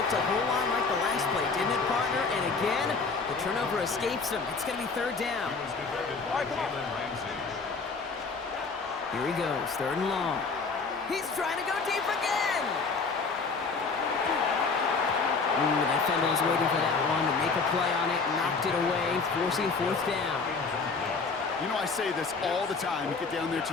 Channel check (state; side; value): quieter; right; 4.5 dB